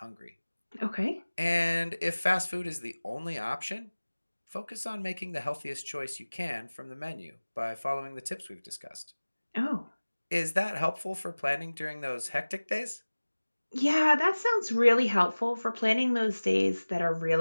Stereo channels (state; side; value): inverted; both; correlation -1.00